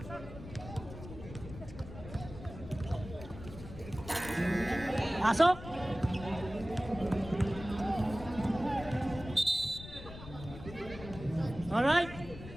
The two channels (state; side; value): noise; left; rumble, 13 dB below the sound